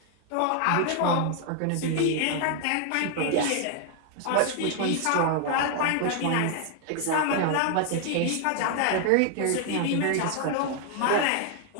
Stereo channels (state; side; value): different; both; correlation 0.00